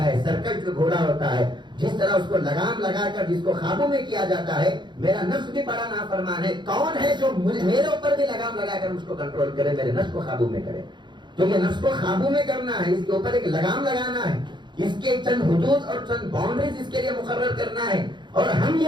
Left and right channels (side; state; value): left; late; 0.22 ms